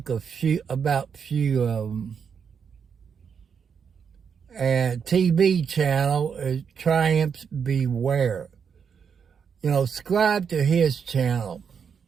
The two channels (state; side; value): quieter; left; 6.8 dB